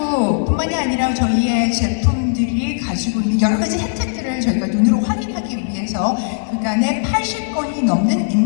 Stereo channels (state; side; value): silent; right; digital silence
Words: 아니라 저희의 제품들이 가지고 있는 여러 가지 혜택들을 저희가 눈으로 확인하기 위해서 그간에 80건이 넘는